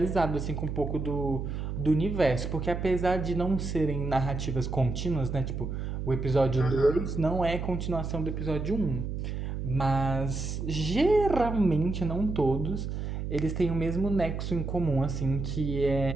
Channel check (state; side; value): noise; right; hum, 4 dB below the sound